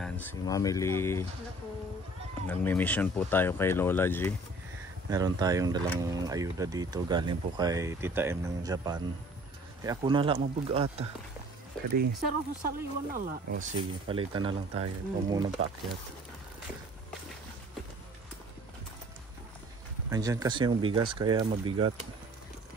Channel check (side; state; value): both; normal; correlation 0.51